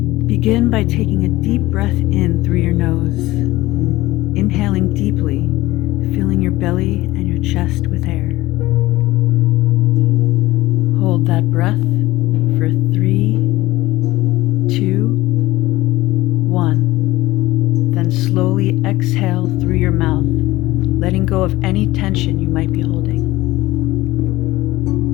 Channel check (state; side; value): quieter; right; 18.2 dB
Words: Begin by taking a deep breath in through your nose, inhaling deeply, filling your belly and your chest with air. Hold that breath for 3, 2, 1. Then slowly exhale through your mouth, letting go of any tension you might be holding.